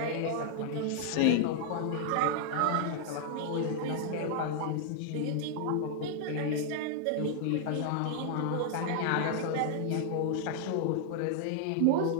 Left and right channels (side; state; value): both; different; correlation -0.01